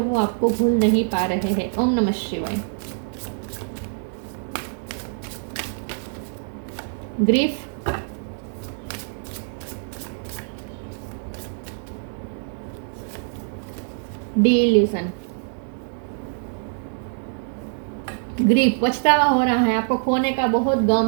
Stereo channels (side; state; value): left; silent; digital silence